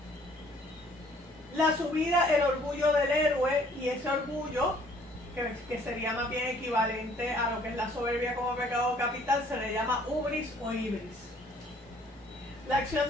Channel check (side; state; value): both; normal; correlation 0.59